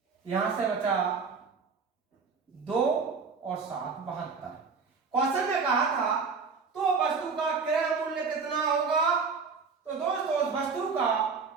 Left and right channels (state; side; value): quieter; left; 5.1 dB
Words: यहां से बचा 2 और 7 72। क्वेश्चन में कहा था तो वस्तु का क्रय मूल्य कितना होगा, तो दोस्तों उस वस्तु का